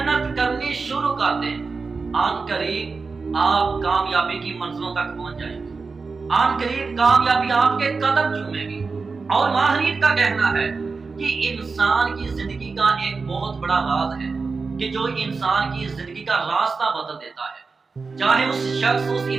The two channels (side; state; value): left; quieter; 4.4 dB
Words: کرنی شروع کر دیں۔ آن قریب آپ کامیابی کی منزلوں تک پہنچ جائیں گے، آن قریب کامیابی آپ کے قدم چومے گی۔ اور ماہرین کا کہنا ہے کہ انسان کی زندگی کا ایک بہت بڑا راز ہے کہ جو انسان کی زندگی کا راستہ بدل دیتا ہے، چاہے اس شخص، اس